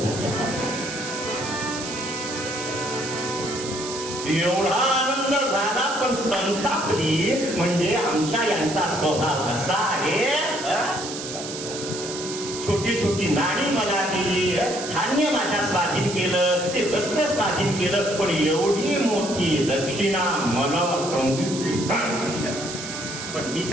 एवढा आनंद झाला, पण संतापली. म्हणजे आमच्या यांचा स्वभाव असा आहे, छोटी छोटी नाणी मला दिली, धान्य माझ्या स्वाधीन केलं, ते वस्त्र स्वाधीन केलं, पण एवढी मोठी दक्षिणा मला सांगितली. पण मी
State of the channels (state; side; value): noise; right; hiss, 8 dB below the sound